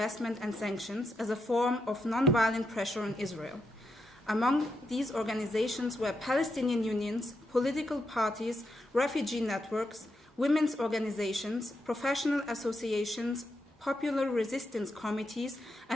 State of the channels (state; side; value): normal; both; correlation 0.83